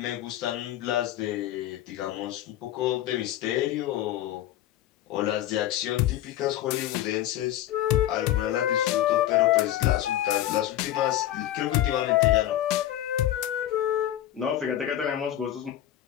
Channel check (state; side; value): quieter; right; 12.8 dB